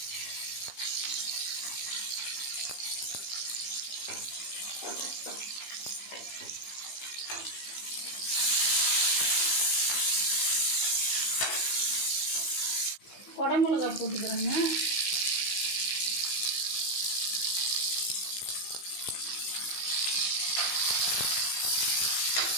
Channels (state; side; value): late; right; 16 ms